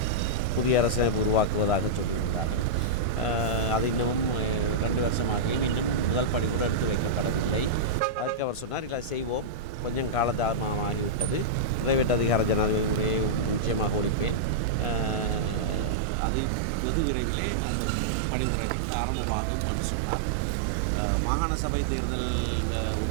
புதிய அரசியலமைப்பு உருவாக்குவதாக சொல்லியிருக்காங்க. அது இன்னமும் 2 வருஷமாக இன்னும் முதல் படிப்பு எடுத்து வைக்கப்படவில்லை. அதுக்கு அவர் சொன்னார், இல்லை செய்வோம், கொஞ்சம் காலதாமதமாகிவிட்டது, பிரைவேட் அதிகார ஜனாதிபதியை நிச்சயமாக ஒழிப்பேன், அதை வெகு விரைவிலே அந்த படிமுறைகள் ஆரம்பமாகும் என்று சொன்னார். மாகாண சபை தேர்தல்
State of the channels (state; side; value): drops out; left; at 16.0 s